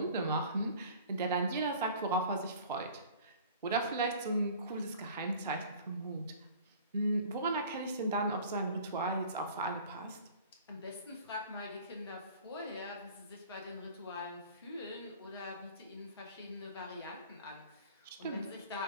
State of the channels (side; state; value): both; inverted; correlation -0.46